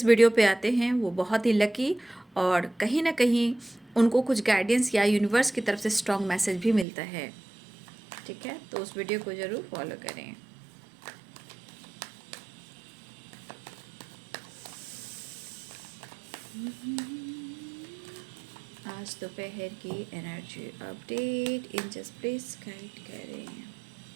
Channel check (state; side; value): drops out; left; at 6.9 s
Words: वीडियो पे आते हैं वो बहुत ही लकी, और कहीं ना कहीं उनको कुछ गाइडेंस या यूनिवर्स की तरफ से स्ट्रॉन्ग मैसेज भी मिलता है। ठीक है, तो उस वीडियो को ज़रूर फॉलो करें। आज दोपहर की energy update angels please guide करें।